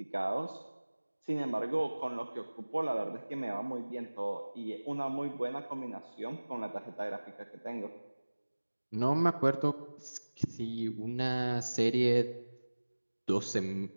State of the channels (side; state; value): both; inverted; correlation -1.00